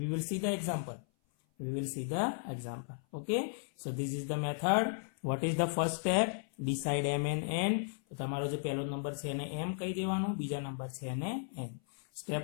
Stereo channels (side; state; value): right; silent; 54 dB below the other